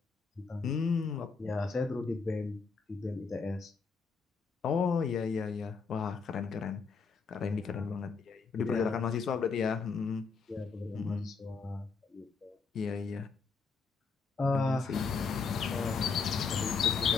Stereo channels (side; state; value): right; quieter; 5.1 dB